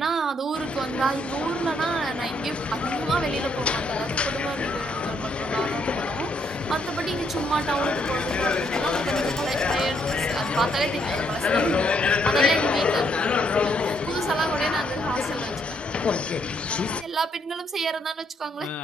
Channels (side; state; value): both; normal; correlation 0.73